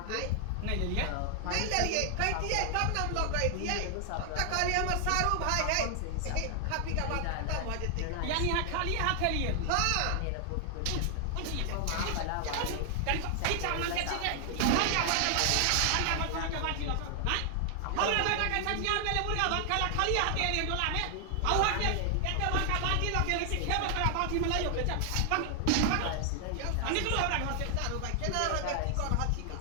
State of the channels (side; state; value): both; different; correlation 0.00